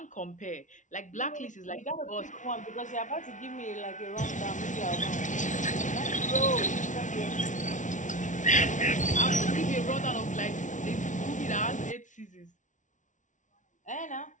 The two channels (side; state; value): right; late; 0.37 ms